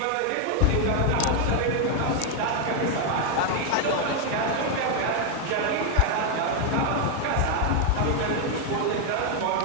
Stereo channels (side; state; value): both; different; correlation 0.01